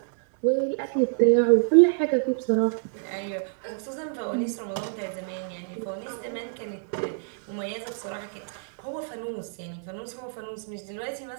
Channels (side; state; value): left; silent; 60 dB below the other